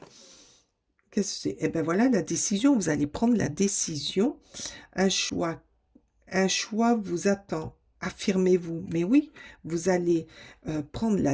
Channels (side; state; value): both; identical; correlation 1.00